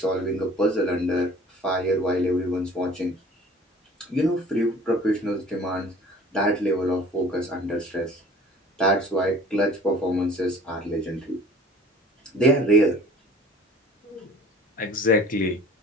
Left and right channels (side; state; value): both; normal; correlation 0.48